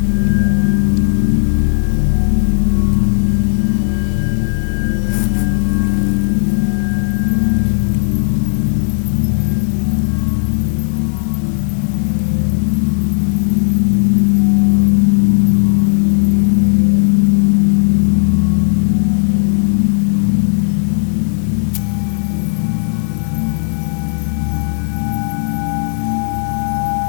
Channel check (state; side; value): silent; right; digital silence